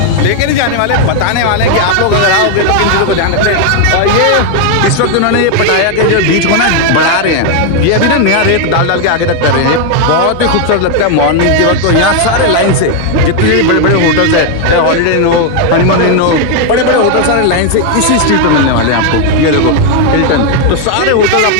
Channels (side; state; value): both; different; correlation 0.01